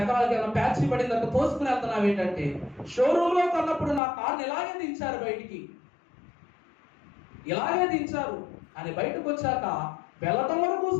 ఏమన్నా ప్యాచ్ పడిందంటే తోసుకుని వెళ్తున్నావు ఏంటంటే, షోరూంలో కొన్నప్పుడు నా కార్ని ఇలాగే దించారు బయటికి, ఇలాగే దించారు అని బయటకు వచ్చాక వెళ్ళటం వరకు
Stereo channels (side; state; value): right; drops out; at 4.0 s